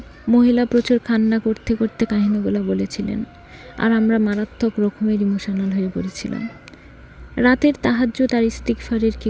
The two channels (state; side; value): identical; both; correlation 1.00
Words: মহিলা প্রচুর কান্না করতে করতে কাহিনীগুলো বলেছিলেন, আর আমরা মারাত্মক রকমের ইমোশনাল হয়ে পড়েছিলাম। রাতের তাহাজ্জুদ আর ইস্তিগফারের কী